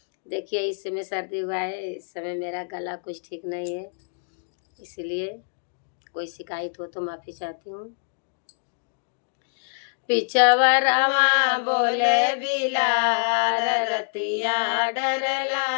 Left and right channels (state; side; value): silent; right; digital silence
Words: देखिए इस समय सर्दी हुआ है, इस समय मेरा गला कुछ ठीक नहीं है, इसलिए कोई शिकायत हो तो माफ़ी चाहती हूँ। पिछवरवा बोले बिलार रतिया डर